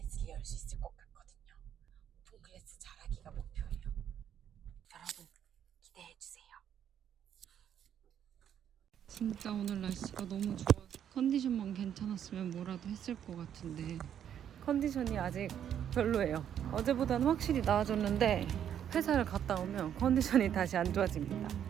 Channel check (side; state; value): left; quieter; 9.5 dB